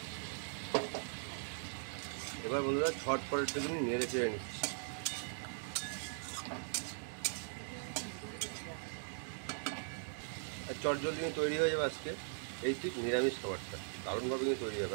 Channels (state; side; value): silent; left; digital silence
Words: এবার বন্ধুরা ঝটপট একটুখানি নেড়ে চেড়ে নিচ্ছি। আর চট জলদি কিন্তু তৈরি হয়ে যাবে আজকে এই ঠিক নিরামিষ খাবারটা, দারুণভাবে কিন্তু তৈরি হবে।